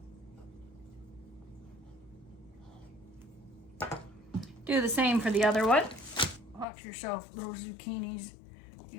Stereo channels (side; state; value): right; drops out; at 6.7 s